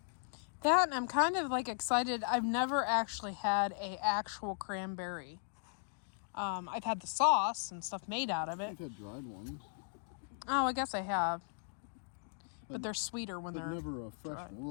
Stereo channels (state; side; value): silent; right; digital silence